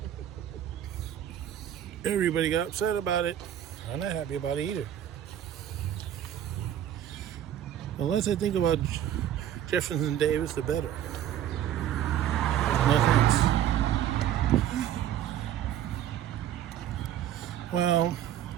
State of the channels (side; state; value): left; quieter; 11.0 dB